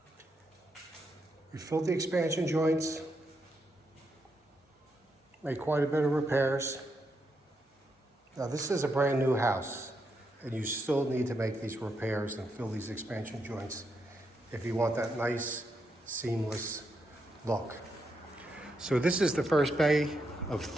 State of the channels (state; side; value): normal; both; correlation 0.82